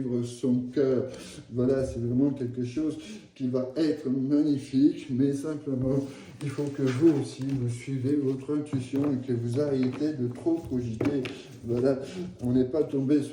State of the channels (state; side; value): identical; both; correlation 1.00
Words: son cœur. Voilà, c'est vraiment quelque chose qui va être magnifique, mais simplement, il faut que vous aussi, vous suivez votre intuition et que vous arrêtez de trop cogiter. Voilà, on n'est pas tombé